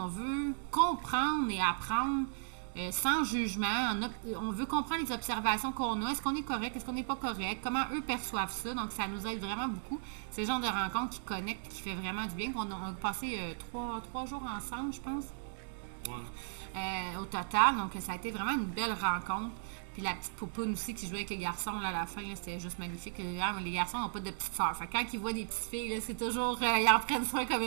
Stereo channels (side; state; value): left; silent; 54 dB below the other